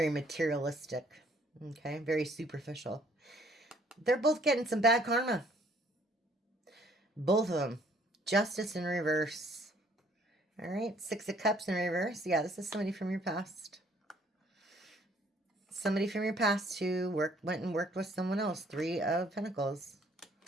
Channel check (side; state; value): both; normal; correlation 0.61